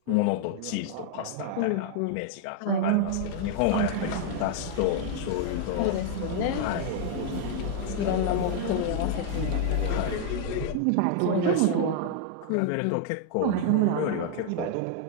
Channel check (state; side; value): different; both; correlation 0.00